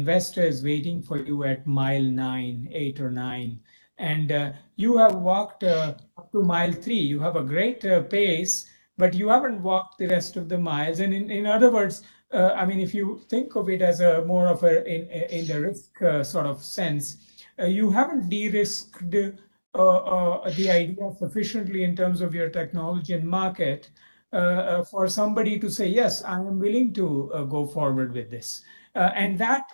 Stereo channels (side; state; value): both; inverted; correlation -1.00